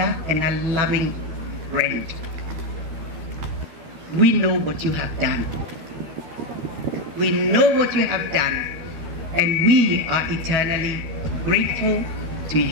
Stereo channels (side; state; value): left; late; 12 ms